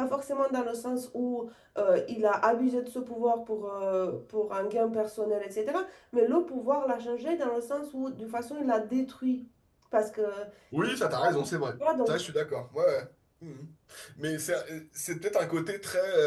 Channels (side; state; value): both; identical; correlation 1.00